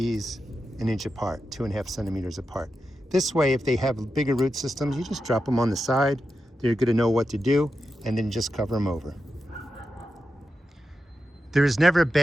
1 inch apart, 2.5 centimeters apart. This way, if they have bigger root systems, you just drop them on the side. They're going to know what to do, and then just cover them over. There is never a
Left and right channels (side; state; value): both; normal; correlation 0.89